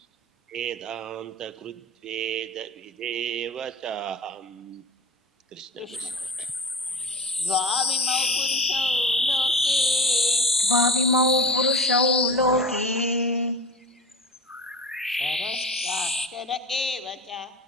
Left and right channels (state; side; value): normal; both; correlation 0.33